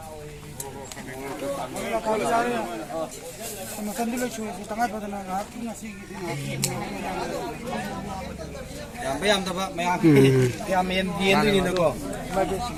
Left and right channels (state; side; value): identical; both; correlation 1.00